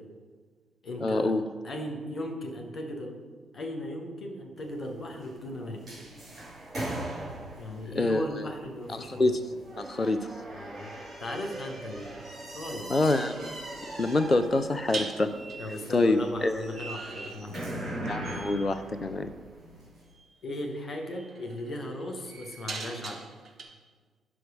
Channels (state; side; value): normal; both; correlation 0.83